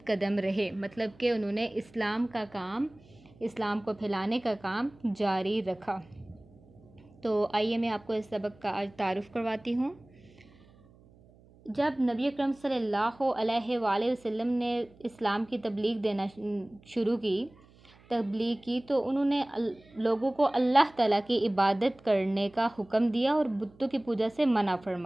कदम रहे। मतलब कि उन्होंने इस्लाम को फैलाने का काम जारी रखा। तो आइए मैं आपको इस सबक का आज तारुफ़ करवाती हूँ। जब नबी अकरम सल्लल्लाहु अलैहि वसल्लम ने इस्लाम की तबलीग की तो उन्होंने लोगों को अल्लाह ताला की इबादत करने का हुक्म दिया और बुतों की पूजा से मना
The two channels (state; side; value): noise; right; hum, 27 dB below the sound